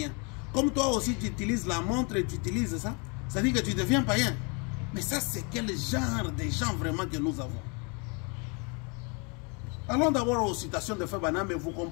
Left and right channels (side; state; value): right; quieter; 33.6 dB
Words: Comme toi aussi tu utilises la montre et tu utilises ça, ça dit que tu deviens païen. Mais ça c'est quel genre de gens vraiment que nous avons? Allons d'abord aux citations de Frère Branham et vous